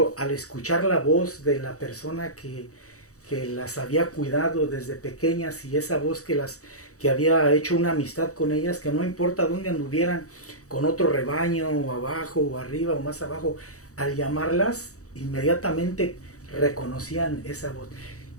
al escuchar la voz de la persona que las había cuidado desde pequeñas y esa voz que había hecho una amistad con ellas, que no importa dónde anduvieran con otro rebaño o abajo o arriba o más abajo, al llamarlas inmediatamente reconocían esa voz.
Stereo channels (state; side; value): late; right; 0.65 ms